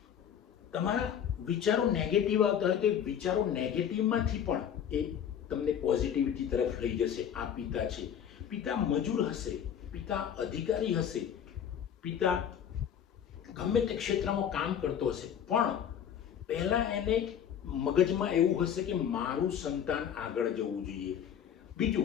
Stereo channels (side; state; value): right; quieter; 8.9 dB